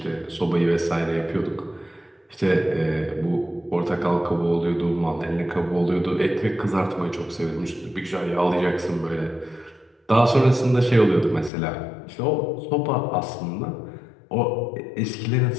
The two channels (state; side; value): drops out; right; at 11.5 s